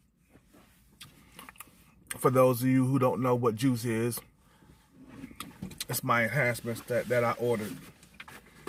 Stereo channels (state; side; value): identical; both; correlation 1.00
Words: For those of you who don't know what juice is, it's my enhancements that I ordered.